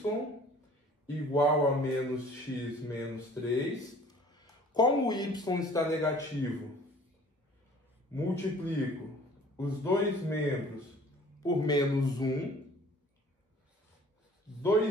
igual a menos x menos 3. Como o y está negativo, multiplico os dois membros por menos 1.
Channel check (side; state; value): both; normal; correlation 0.51